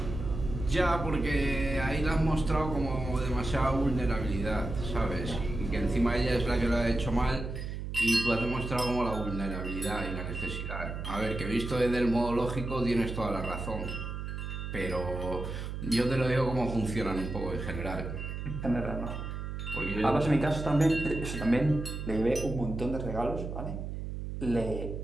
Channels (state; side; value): noise; right; hum, 6 dB below the sound